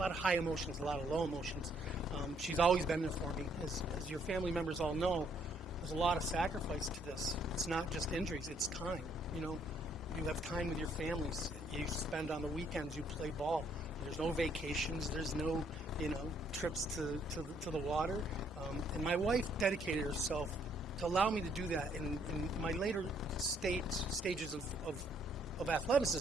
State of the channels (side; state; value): both; normal; correlation 0.68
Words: high emotions, a lot of low emotions. She's always been there for me. As your family members all know, there's a lot of sacrifice to this. It's not just injuries, it's time. You know, you have time with your families. You spend on the weekends, you play ball. There's no vacations, there's no, trips to the water. And my wife dedicated herself to allow me to do that in my later stages of